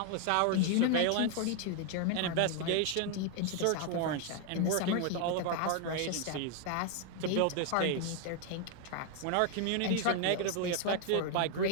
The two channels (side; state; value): both; different; correlation 0.00